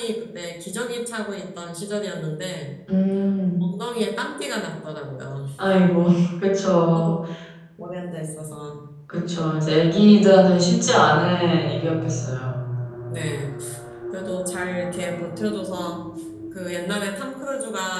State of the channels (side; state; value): both; identical; correlation 1.00